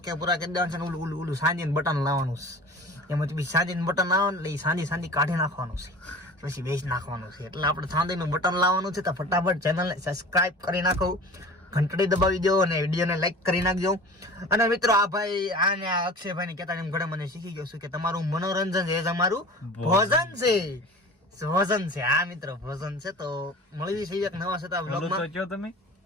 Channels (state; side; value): normal; both; correlation 0.40